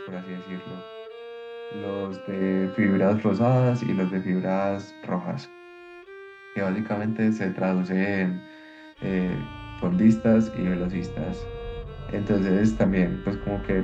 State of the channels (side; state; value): both; identical; correlation 1.00